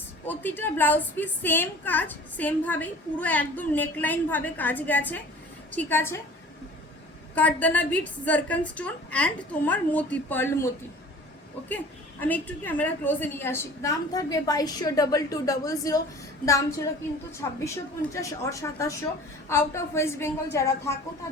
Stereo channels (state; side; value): normal; both; correlation 0.44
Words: প্রতিটা ব্লাউজ পিস সেম কাজ, সেমভাবেই পুরো একদম নেকলাইন ভাবে কাজ গেছে। ঠিক আছে, কাঠদানা বিটস, জারকান স্টোন অ্যান্ড তোমার মতি, পার্ল মতি। ওকে, আমি একটু ক্যামেরা ক্লোজে নিয়ে আসি। দাম থাকবে 22,200। দাম ছিল কিন্তু 2650 আর 2700। আউট অফ ওয়েস্ট বেঙ্গল যারা থাকো